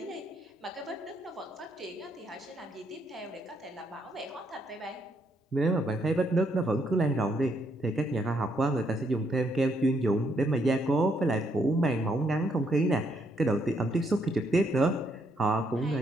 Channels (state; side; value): normal; both; correlation 0.74